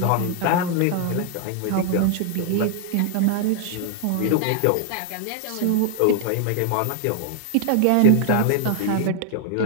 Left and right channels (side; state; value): both; different; correlation 0.00